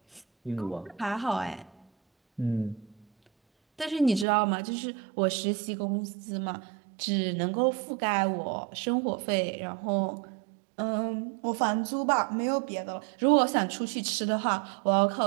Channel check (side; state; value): left; drops out; at 4.2 s